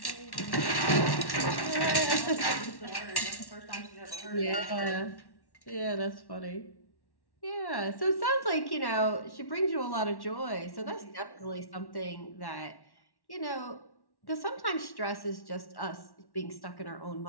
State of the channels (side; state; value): right; late; 1.1 ms